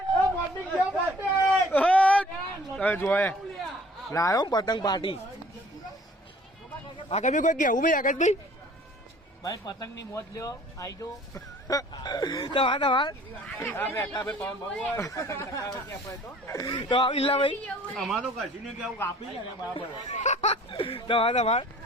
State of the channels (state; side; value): normal; both; correlation 0.52